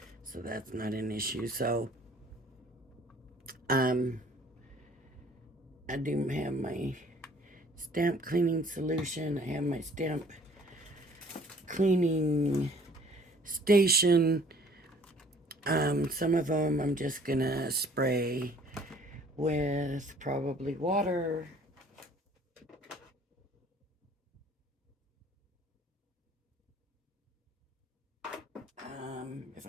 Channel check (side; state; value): both; normal; correlation 0.55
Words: so that's not an issue. So I do have my stamp cleaning solution. I have my stamp cleaning station. Some of them I'm just gonna spray with probably water. If